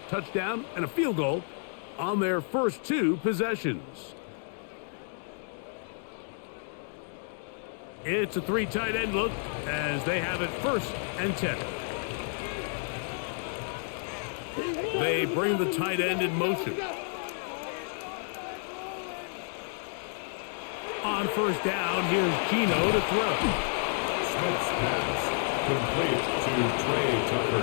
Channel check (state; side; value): silent; right; 58 dB below the other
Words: Touchdown and a field goal on their first 2 possessions. It's a 3 tight end look as they have it 1st and 10. They bring the tight end in motion. On 1st down, here's Gino to throw. Smith's pass complete to Trey